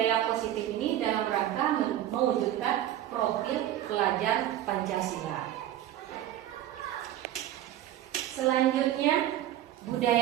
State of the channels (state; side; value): quieter; left; 12.6 dB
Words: positif ini dalam rangka mewujudkan profil pelajar Pancasila. Selanjutnya